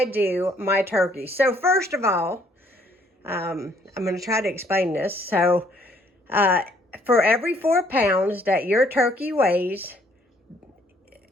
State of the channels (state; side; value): normal; both; correlation 0.64